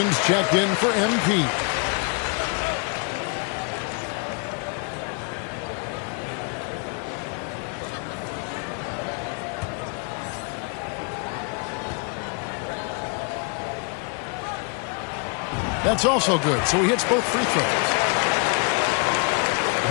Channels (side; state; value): right; quieter; 36.1 dB